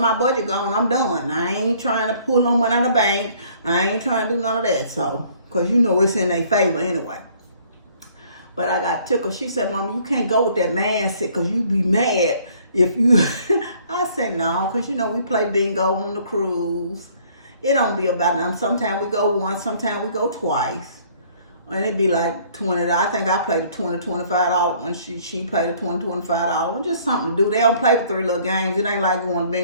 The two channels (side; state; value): both; inverted; correlation -0.59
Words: budget gone, I'm done. I ain't trying to pull no money out of the bank. I ain't trying to do none of that. So, because, you know, it's in their favor anyway. But I got tickled. She said, Mama, you can't go with that mindset because you be mad if you... I said, no, because, you know, we play bingo on the cruise. It don't be about nothing. Sometimes we go once, sometimes we go twice. And it'd be like $20. I think I played the $20, $25 when she played the $20, $25. Just something to do. They don't play the 3 little games. It ain't like going